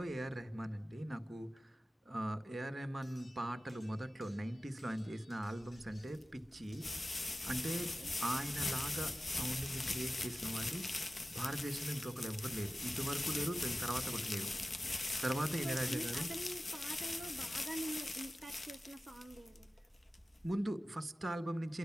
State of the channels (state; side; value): normal; both; correlation 0.95